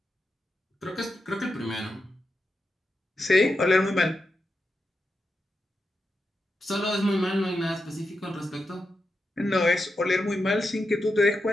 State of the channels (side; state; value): both; normal; correlation 0.87